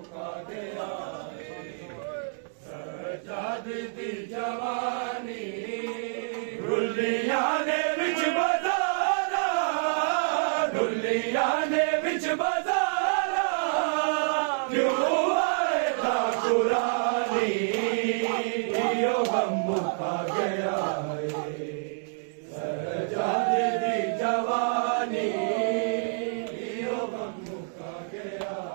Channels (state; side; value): silent; left; digital silence